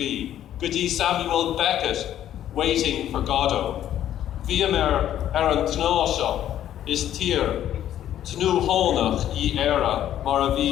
go dtí Samuel Beckett waiting for Godot. Bhíam an tná seo is tír tnú hónach í éire mar a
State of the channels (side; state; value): right; quieter; 11.4 dB